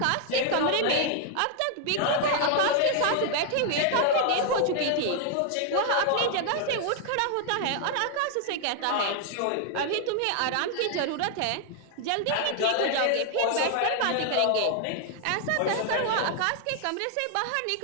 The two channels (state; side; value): different; both; correlation 0.00